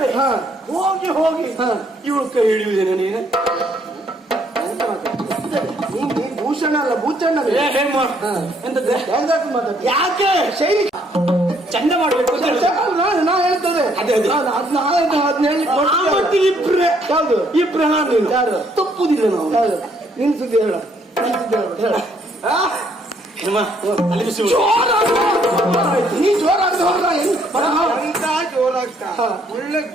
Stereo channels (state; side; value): normal; both; correlation 0.68